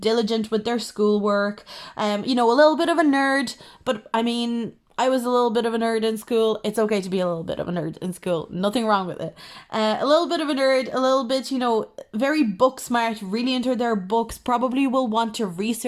with their schoolwork. A little bit of a nerd, but I mean, I was a little bit of a nerd in school. It's okay to be a little bit of a nerd in school. Nothing wrong with it. A little bit of a nerd, a little bit, very book smart, really into their books, probably will want to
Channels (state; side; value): identical; both; correlation 1.00